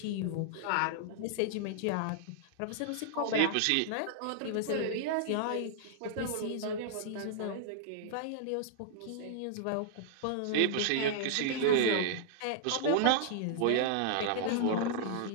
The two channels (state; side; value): different; both; correlation -0.01